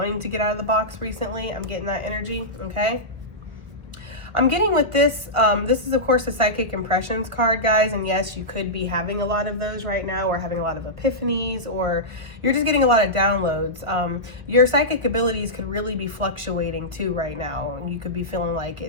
to get out of the box recently. I'm getting that energy, okay? I'm getting with this, this is of course a psychic impressions card, guys, and yes, you could be having a lot of those right now, or having a lot of epiphanies, or you're just getting a lot of downloads. Your psychic abilities could really be fluctuating too right now, and you could be feeling like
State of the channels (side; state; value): left; late; 1.2 ms